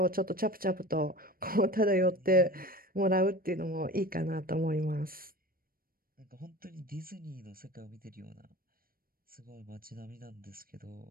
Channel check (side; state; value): left; late; 0.42 ms